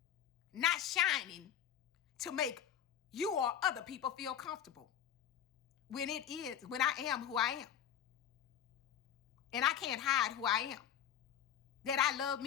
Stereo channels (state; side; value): quieter; right; 9.7 dB